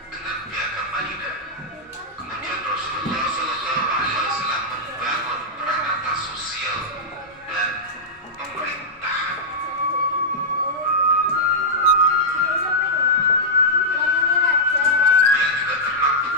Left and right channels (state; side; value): normal; both; correlation -0.09